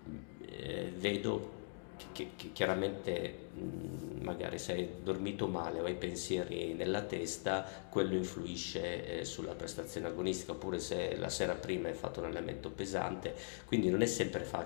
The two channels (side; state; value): right; silent; digital silence